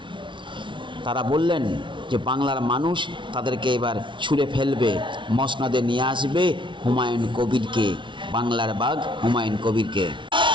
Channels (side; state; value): left; late; 0.24 ms